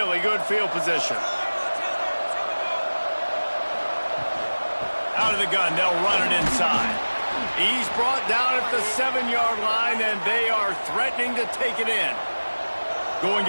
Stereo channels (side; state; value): both; inverted; correlation -1.00